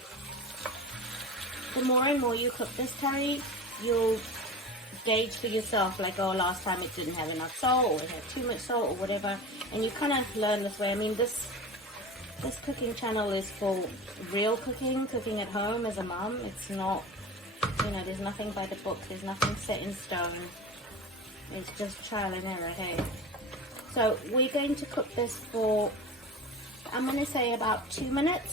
The more and more you cook this curry, you'll gauge for yourself, like, oh, last time it didn't have enough salt, or it had too much salt, or whatever, and you kind of learn this way. I mean, this cooking channel is for real cooking at home as a mum. It's not, you know, there's nothing by the book, there's nothing set in stone. It's just trial and error, hey? So we're going to cook this for, I'm going to say about 2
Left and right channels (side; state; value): both; normal; correlation 0.32